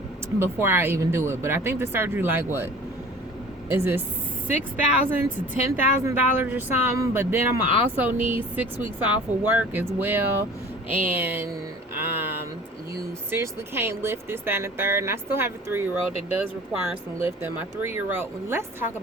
Before I even do it. But I think the surgery, like, what is it, $6,000 to $10,000 or something? But then I'm gonna also need 6 weeks off of work as well, and you seriously can't lift this, that, and the third. And I still have a 3-year-old that does require some lifting. My 3-year-old, let's talk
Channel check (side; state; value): both; normal; correlation 0.44